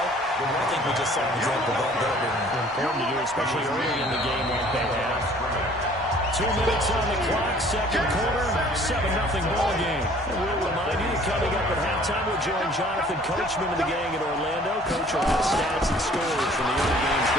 I think we just saw an example of that there. Important to do, especially early in the game like they have. 2 minutes on the clock, second quarter, 7-0 ball game. And we'll remind you, coming up at halftime, we'll join Jonathan Coachman of the gang in Orlando. Coach will have stats and scores from the other games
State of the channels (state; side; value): normal; both; correlation 0.54